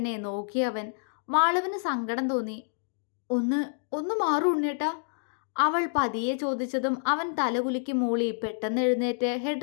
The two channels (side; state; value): right; silent; digital silence